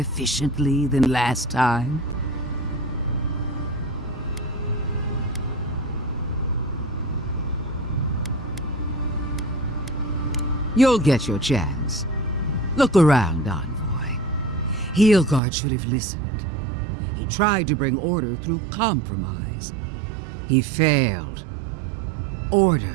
than last time? You'll get your chance. Look around, Envoy. Heelguard should have listened. He tried to bring order through compromise. He failed.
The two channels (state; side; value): drops out; left; at 15.4 s